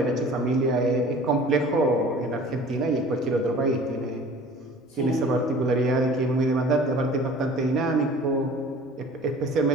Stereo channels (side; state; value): both; normal; correlation 0.46